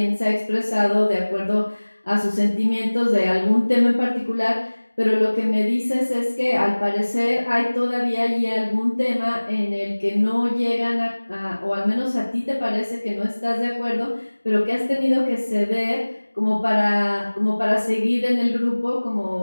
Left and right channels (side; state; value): both; inverted; correlation -1.00